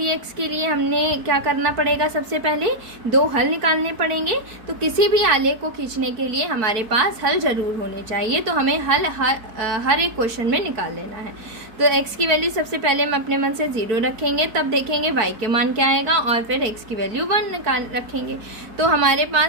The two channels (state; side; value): late; left; 4.5 ms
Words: के लिए हमने क्या करना पड़ेगा, सबसे पहले 2 हल निकालने पड़ेंगे। तो किसी भी आलेख को खींचने के लिए हमारे पास हल ज़रूर होने चाहिए, तो हमें हल हर एक क्वेश्चन में निकाल लेना है। तो x की वैल्यू सबसे पहले हम अपने मन से 0 रखेंगे, तब देखेंगे y के मान क्या आएगा, और फिर x की वैल्यू 1 निकाल रखेंगे। तो हमारे